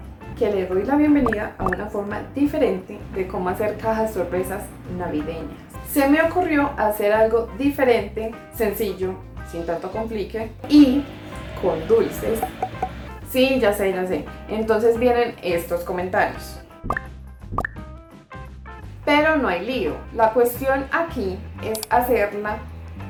que le doy la bienvenida a una forma diferente de cómo hacer cajas sorpresas navideñas. Se me ocurrió hacer algo diferente, sencillo, sin tanto complique y con dulces. Sí, ya sé, ya sé. Entonces vienen estos comentarios. Pero no hay lío. La cuestión aquí es hacerla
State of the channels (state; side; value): identical; both; correlation 1.00